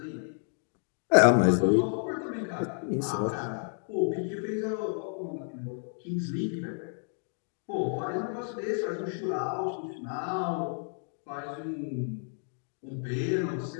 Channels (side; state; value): right; silent; 57 dB below the other